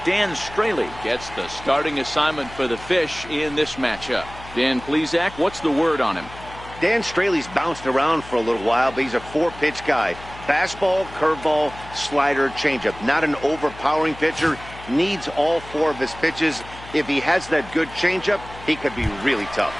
Dan Straley gets the starting assignment for the Fish in this matchup. Dan Plesac, what's the word on him? Dan Straley's bounced around for a little while, but he's a 4-pitch guy. Fastball, curveball, slider, changeup. Not an overpowering pitcher. Needs all 4 of his pitches. If he has that good changeup, he could be really tough.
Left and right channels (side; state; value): left; noise; hum, 17 dB below the sound